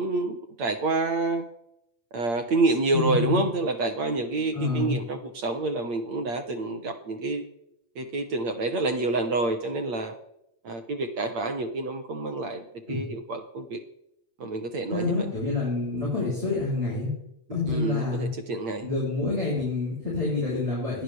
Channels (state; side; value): late; left; 8.7 ms